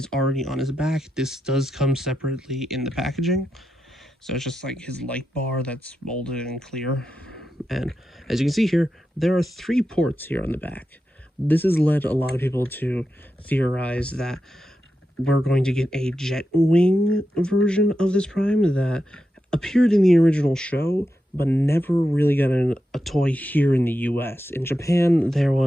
already on his back. This does come separately in the packaging. So it's just like his light bar that's molded and clear. And as you can see here, there are 3 ports here on the back. This has led a lot of people to theorize that we're going to get a jet wing version of this Prime that appeared in the original show, but never really got a toy here in the US. In Japan, there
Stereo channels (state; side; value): normal; both; correlation 0.88